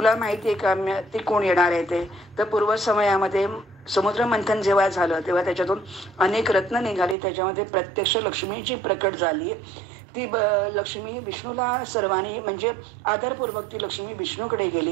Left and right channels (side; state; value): left; drops out; at 7.2 s